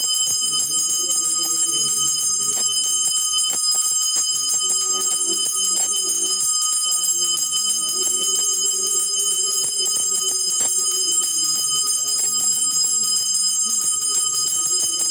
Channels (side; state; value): both; identical; correlation 1.00